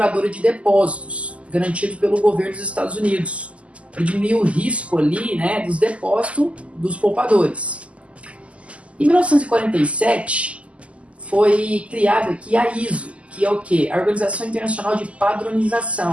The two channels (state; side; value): late; left; 0.061 ms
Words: de depósitos, garantido pelo governo dos Estados Unidos, para diminuir o risco ali, né, dos depósitos dos poupadores. Em 1947 foi criada aqui a ISO, que é o quê? A Organização Internacional de